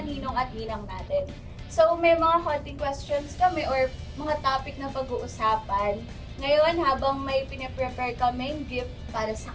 ninong at ninang natin. So, may mga konting questions kami or mga topic na pag-uusapan. Ngayon, habang may pinaprepare kaming gift para sa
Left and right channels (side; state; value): both; identical; correlation 1.00